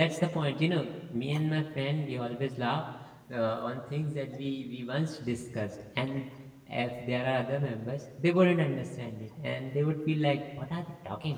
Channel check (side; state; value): both; identical; correlation 1.00